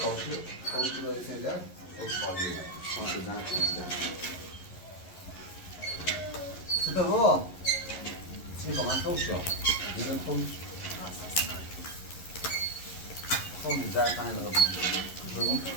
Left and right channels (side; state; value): right; late; 11 ms